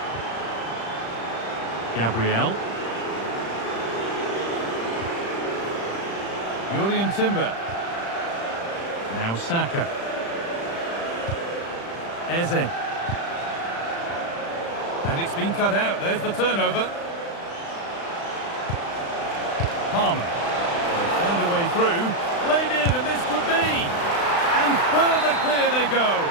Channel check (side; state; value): right; late; 35 ms